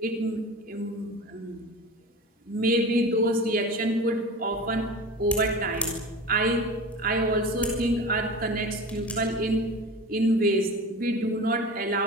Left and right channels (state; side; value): normal; both; correlation 0.33